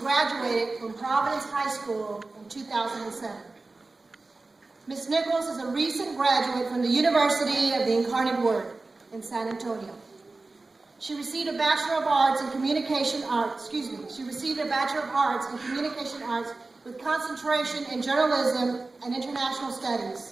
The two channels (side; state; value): left; quieter; 3.4 dB